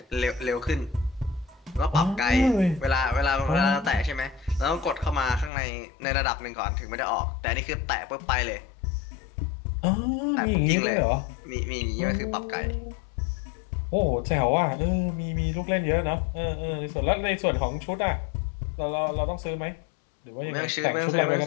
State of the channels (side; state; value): right; drops out; at 5.5 s